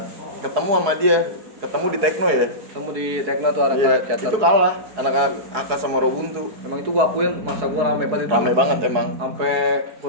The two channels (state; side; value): late; left; 4.7 ms